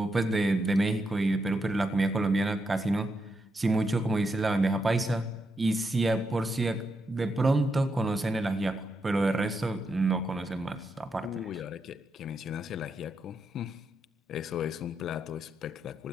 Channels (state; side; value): normal; both; correlation 0.82